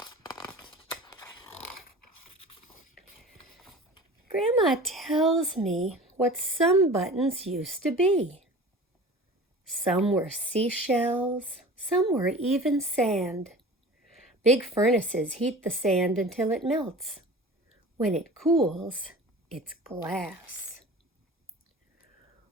Grandma tells me what some buttons used to be. Some were seashells, some were even sand. Big furnaces heat the sand until it melts. When it cools, it's glass.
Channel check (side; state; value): both; normal; correlation 0.39